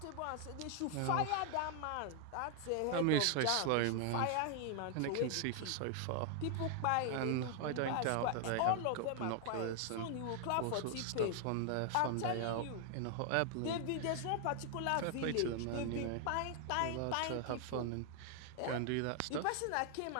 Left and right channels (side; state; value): both; different; correlation 0.00